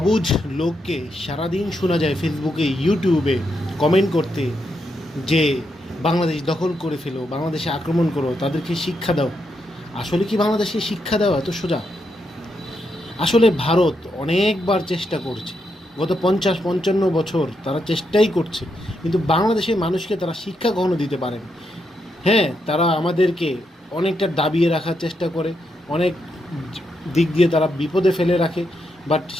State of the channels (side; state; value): both; normal; correlation 0.81